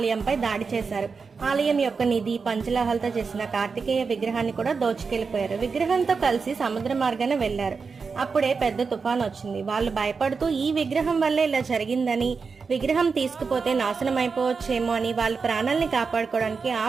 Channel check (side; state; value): left; quieter; 5.0 dB